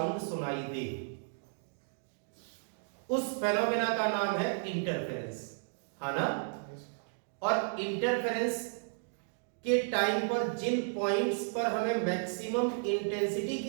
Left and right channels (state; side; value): silent; left; digital silence